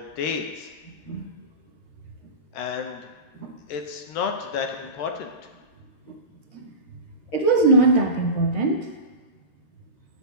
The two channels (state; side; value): late; right; 13 ms